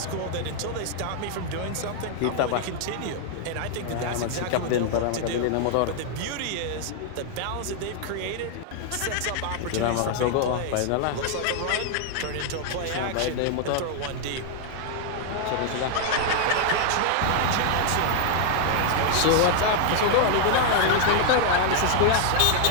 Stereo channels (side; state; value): both; different; correlation 0.00